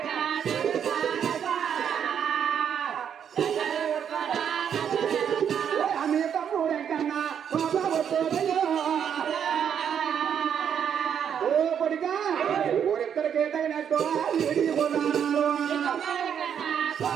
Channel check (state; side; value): quieter; left; 8.3 dB